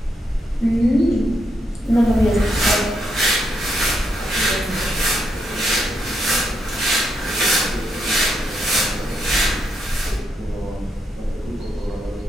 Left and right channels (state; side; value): normal; both; correlation 0.80